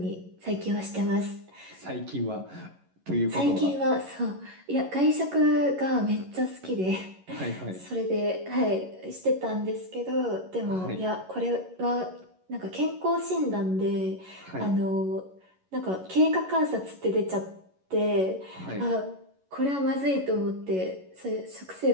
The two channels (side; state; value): left; late; 11 ms